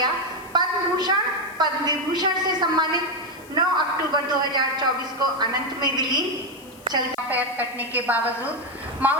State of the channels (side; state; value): left; noise; hiss, 24 dB below the sound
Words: पद्म भूषण पद्म विभूषण से सम्मानित 9 अक्टूबर 2024 को अनंत में विलीन। चलता पैर कटने के बावजूद